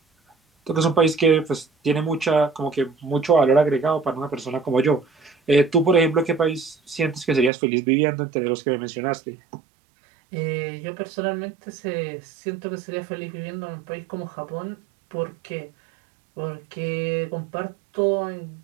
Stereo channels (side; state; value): left; drops out; at 7.5 s